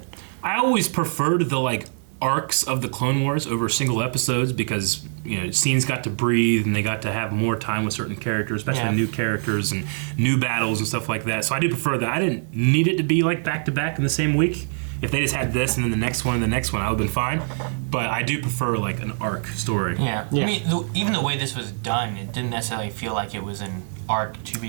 I always preferred the, like, arcs of the Clone Wars over single episodes because, scenes got to breathe and they got to have more time with certain characters, especially new characters and new battles and stuff like that. So I do prefer that. I didn't need it to be, like, back-to-back in the same week. If they just had this and then the next one and the next one, I would have been fine. But I do prefer, like, an arc story. Yeah. I mean, even the way this was done, it didn't necessarily feel like it was an arc to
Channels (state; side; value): silent; left; digital silence